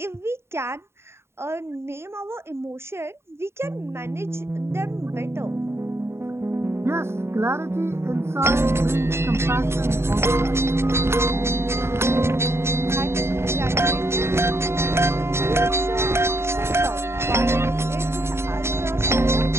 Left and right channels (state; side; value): late; left; 0.12 ms